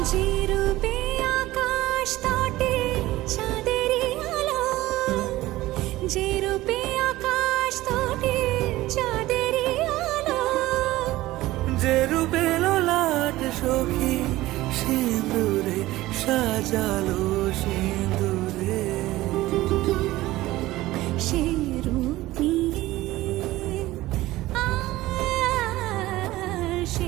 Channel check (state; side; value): quieter; left; 17.3 dB